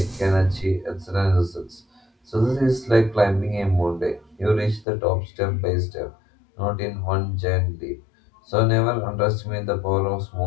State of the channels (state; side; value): drops out; right; at 4.9 s